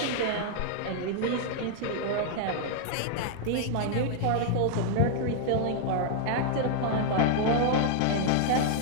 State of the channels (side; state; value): both; different; correlation 0.00